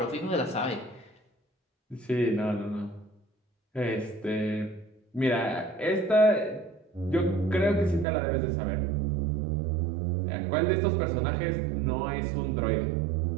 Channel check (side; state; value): left; drops out; at 8.1 s